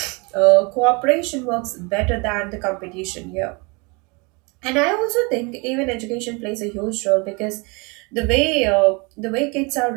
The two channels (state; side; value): quieter; left; 29.2 dB